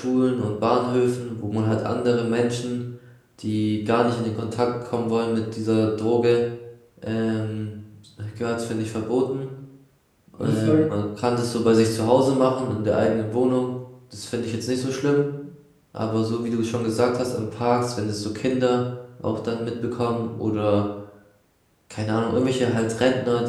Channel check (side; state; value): both; identical; correlation 1.00